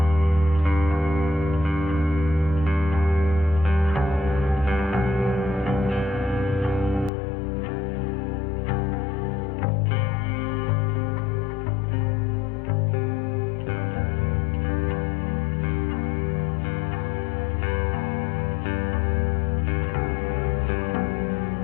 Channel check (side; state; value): right; drops out; at 7.1 s